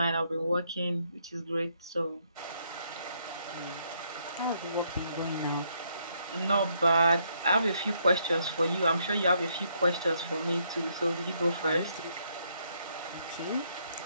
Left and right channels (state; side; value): inverted; both; correlation -0.73